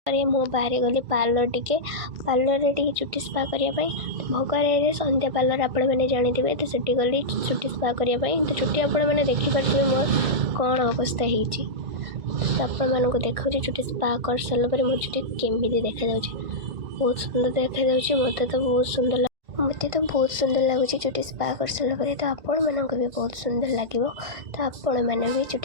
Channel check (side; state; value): left; late; 1.6 ms